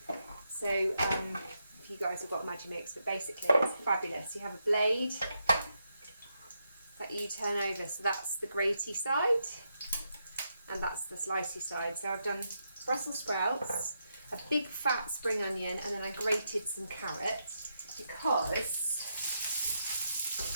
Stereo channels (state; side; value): inverted; both; correlation -0.82